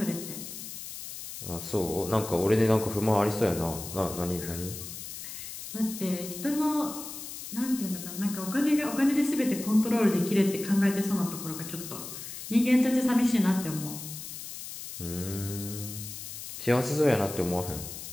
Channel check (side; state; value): left; noise; hiss, 10 dB below the sound